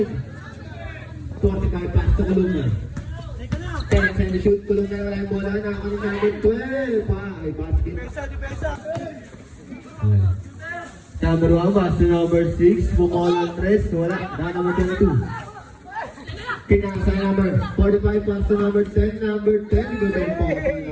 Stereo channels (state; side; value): identical; both; correlation 1.00